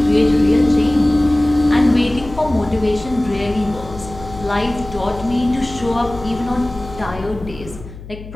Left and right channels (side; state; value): left; noise; hum, 15 dB below the sound